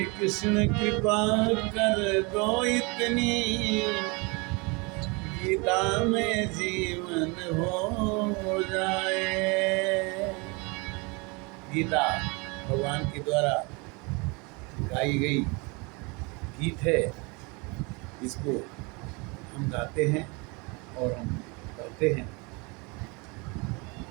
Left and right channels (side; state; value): left; quieter; 28.9 dB